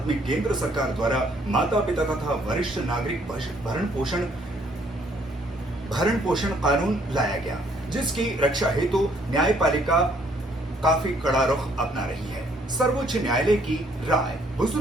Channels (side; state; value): both; normal; correlation 0.65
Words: में केंद्र सरकार द्वारा माता पिता तथा वरिष्ठ नागरिक भरण पोषण कानून लाया गया, जिसकी रक्षा हेतु न्यायपालिका काफी कड़ा रुख अपना रही है। सर्वोच्च न्यायालय की राय,